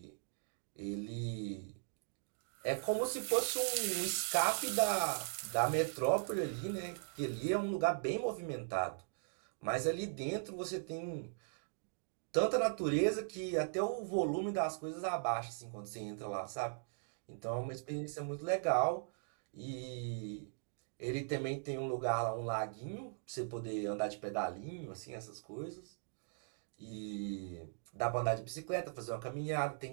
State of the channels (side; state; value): left; silent; digital silence